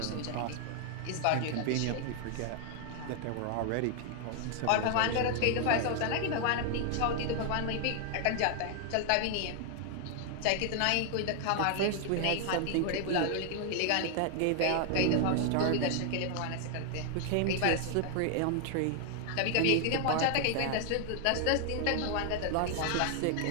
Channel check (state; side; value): different; both; correlation 0.00